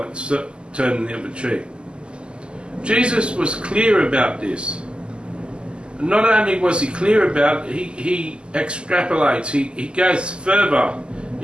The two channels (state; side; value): late; left; 0.050 ms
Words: turning the other cheek? Jesus was clear about this. Not only was he clear about it, he extrapolates, he goes further